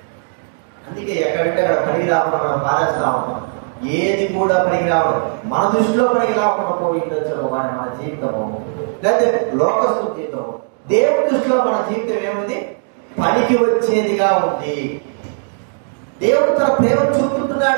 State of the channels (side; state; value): left; silent; digital silence